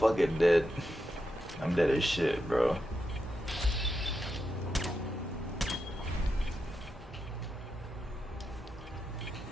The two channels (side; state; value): both; normal; correlation 0.86